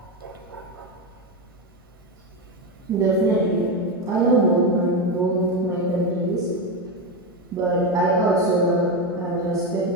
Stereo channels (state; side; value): normal; both; correlation 0.13